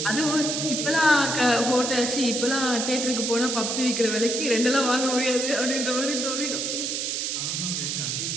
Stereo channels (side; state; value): right; noise; hiss, 1 dB below the sound